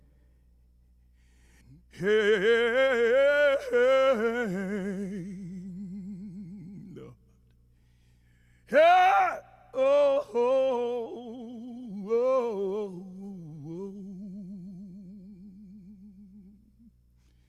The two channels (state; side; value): identical; both; correlation 1.00